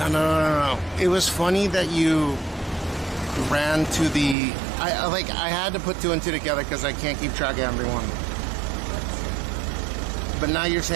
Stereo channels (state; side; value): drops out; left; at 4.4 s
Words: No. It was funny that you ran to the... I had to put two and two together because I can't keep track of everyone. But now you're